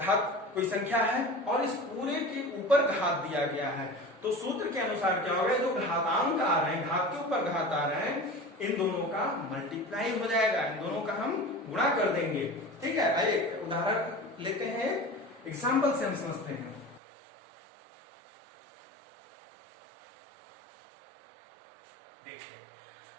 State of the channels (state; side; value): drops out; left; at 17.0 s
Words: कोई संख्या है और इस पूरे के ऊपर घात दिया गया है, तो सूत्र के अनुसार क्या होगा, जो घातांक आ रहे हैं, घात के ऊपर घात आ रहे हैं, इन दोनों का मल्टीप्लाई हो जाएगा, इन दोनों का हम गुणा कर देंगे। ठीक है, आइए उदाहरण लेते हैं, एग्जाम्पल से हम समझते हैं। देखिए